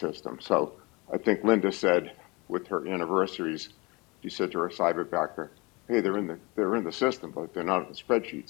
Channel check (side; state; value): right; quieter; 26.1 dB